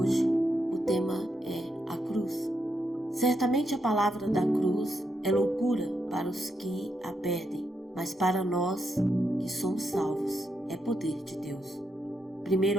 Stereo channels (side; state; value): both; normal; correlation 0.81